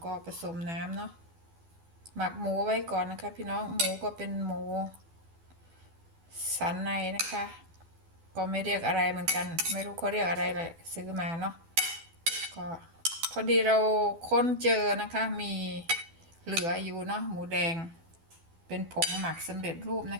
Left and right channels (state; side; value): late; left; 12 ms